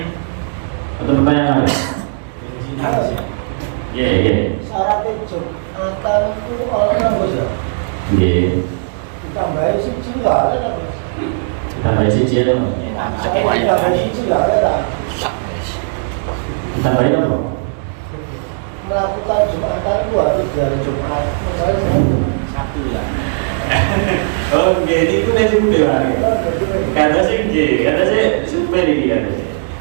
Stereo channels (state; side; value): silent; left; digital silence